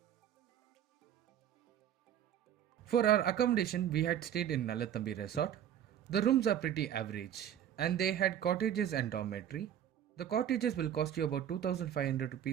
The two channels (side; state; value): left; quieter; 10.1 dB